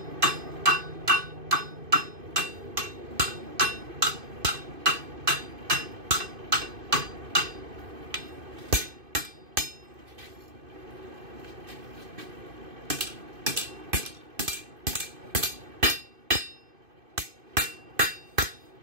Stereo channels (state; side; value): late; left; 2.5 ms